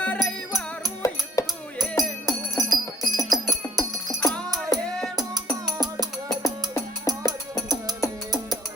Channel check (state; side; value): normal; both; correlation 0.59